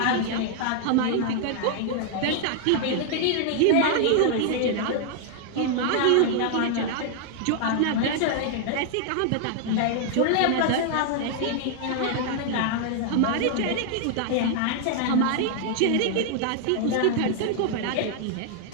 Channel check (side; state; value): both; different; correlation 0.00